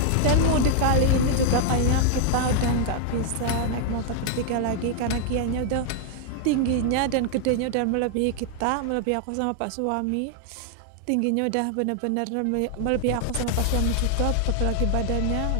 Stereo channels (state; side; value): different; both; correlation 0.00